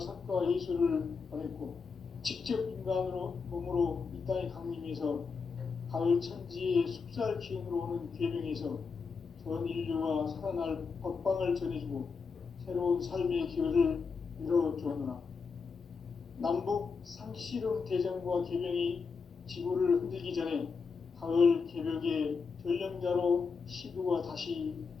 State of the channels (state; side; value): quieter; right; 5.2 dB